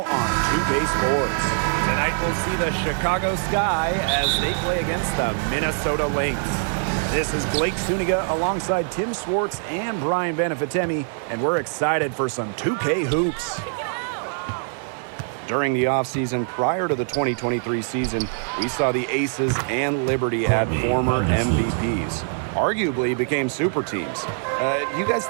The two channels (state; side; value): silent; left; 60 dB below the other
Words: on 2K Sports. Tonight we'll see the Chicago Sky as they play against the Minnesota Lynx. This is Blake Suniga alongside Tim Swartz and Brian Benefitemi, and we're excited for some 2K hoops. During the offseason prior to the 2023 season, we saw the Aces and Liberty add former MVPs. Arguably became super teams. You guys